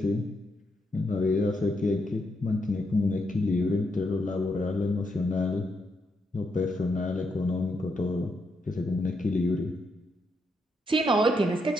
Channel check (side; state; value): both; normal; correlation 0.80